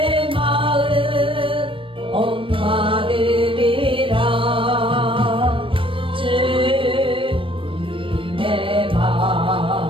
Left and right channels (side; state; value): left; late; 0.25 ms